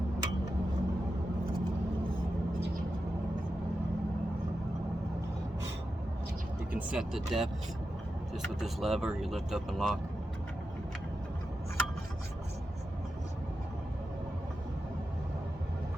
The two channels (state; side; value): normal; both; correlation 0.90